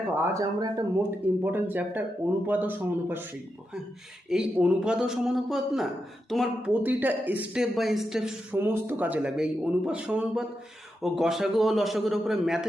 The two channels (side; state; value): both; normal; correlation 0.86